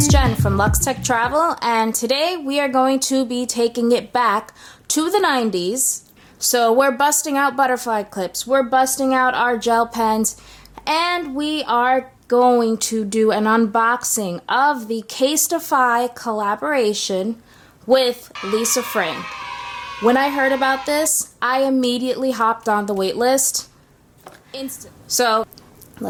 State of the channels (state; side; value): identical; both; correlation 1.00